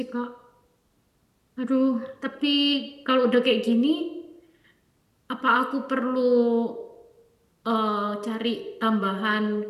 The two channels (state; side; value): identical; both; correlation 1.00